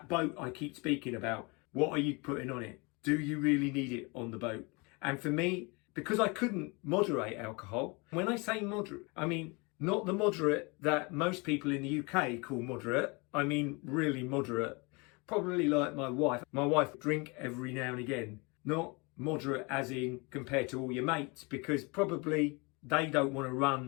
boat I keep speaking about, what are you putting on it? Do you really need it on the boat? And for me, because I couldn't moderate alcohol, when I say moderate, I mean not the moderate that most people in the UK call moderate. I mean really moderate. Probably like my wife. My wife drink every now and again. Not moderate as in compared to all your mates, because probably they don't want to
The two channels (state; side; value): quieter; right; 28.6 dB